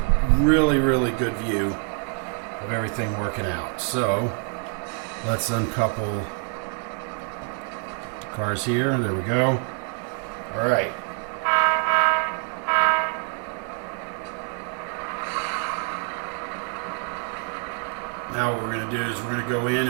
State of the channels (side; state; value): left; quieter; 38.4 dB